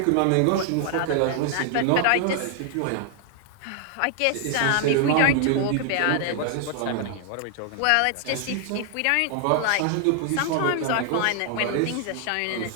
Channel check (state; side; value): different; both; correlation 0.00